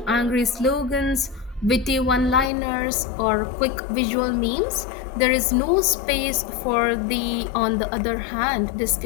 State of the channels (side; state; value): right; drops out; at 2.5 s